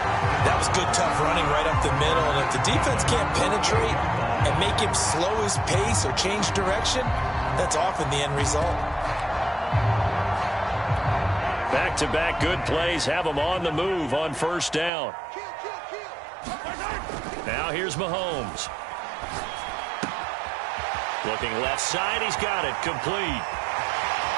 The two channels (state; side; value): drops out; left; at 14.9 s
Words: That was good, tough running right up the middle, and if the defense can't penetrate and make him slow his pace or change direction, that's often the end result. Back-to-back good plays have him on the move on 1st down. Now here's Mahomes. Looking left side, he's got it, complete.